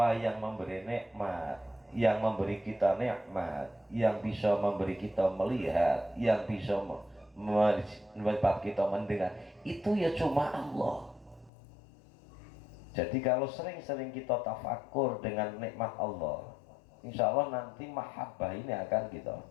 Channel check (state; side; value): drops out; right; at 11.5 s